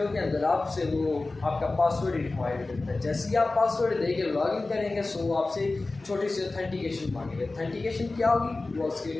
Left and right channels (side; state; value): right; quieter; 3.3 dB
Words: के अंदर आपसे वो आपका पासवर्ड रिक्वायर्ड करता है। जैसे ही आप पासवर्ड देके लॉगिन करेंगे सो वो आपसे छोटी सी ऑथेंटिकेशन मांगेगा। ऑथेंटिकेशन क्या होगी वो उसके